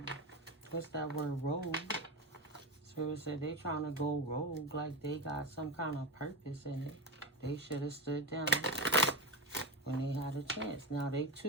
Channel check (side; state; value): both; normal; correlation 0.19